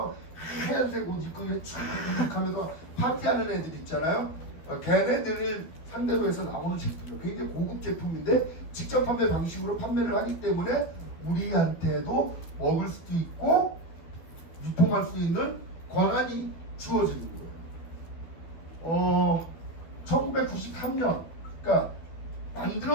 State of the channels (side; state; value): right; late; 12 ms